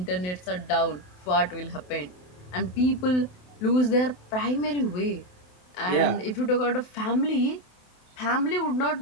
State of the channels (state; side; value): late; right; 28 ms